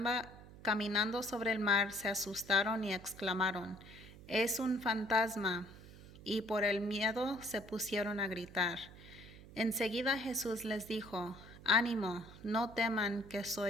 sobre el mar, se asustaron y exclamaron: «Es un fantasma», y por el miedo se pusieron a gritar. Enseguida Jesús les dijo: «Ánimo, no teman, que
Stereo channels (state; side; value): noise; right; hum, 18 dB below the sound